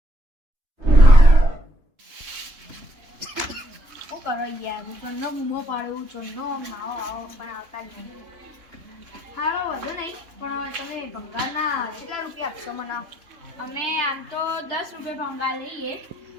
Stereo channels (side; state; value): left; late; 3.3 ms